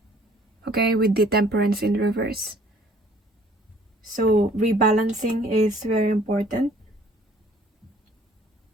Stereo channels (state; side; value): normal; both; correlation 0.56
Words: okay, with the Temperance in reverse. So rebalancing is very important